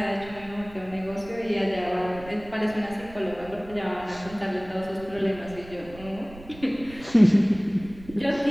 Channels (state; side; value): noise; right; rumble, 18 dB below the sound